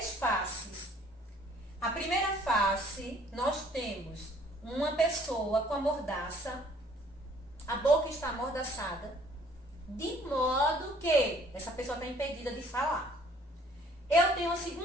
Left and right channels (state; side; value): normal; both; correlation 0.58